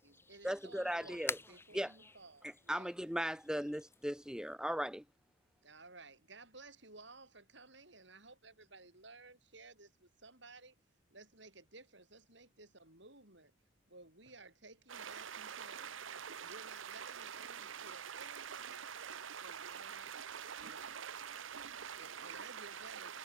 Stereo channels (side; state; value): both; normal; correlation 0.62